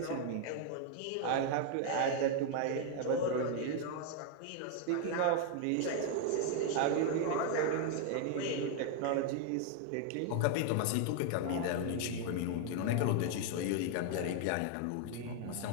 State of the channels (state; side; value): different; both; correlation 0.00